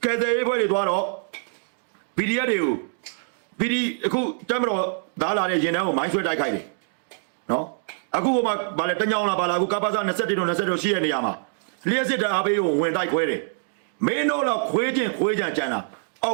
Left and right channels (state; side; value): silent; left; digital silence